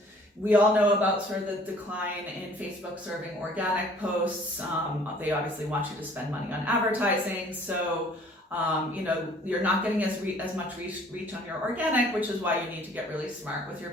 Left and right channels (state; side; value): normal; both; correlation 0.55